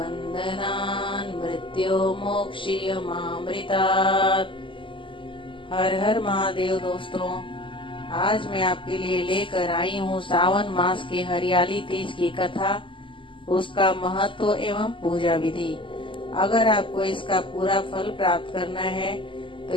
मृत्योर्मोक्षयमामृतात्। हर हर महादेव। दोस्तों, आज मैं आपके लिए लेकर आई हूँ सावन मास के हरियाली तीज की कथा, उसका महत्व एवं पूजा विधि। अगर आपको इसका पूरा फल प्राप्त करना है तो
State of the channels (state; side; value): late; right; 0.25 ms